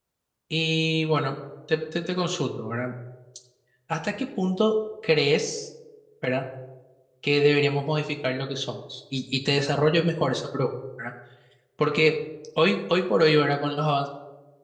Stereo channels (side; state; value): both; identical; correlation 1.00